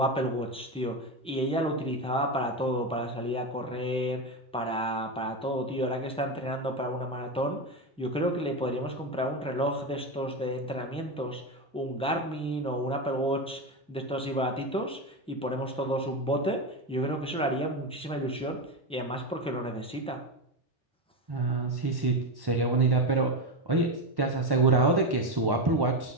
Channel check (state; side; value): normal; both; correlation 0.15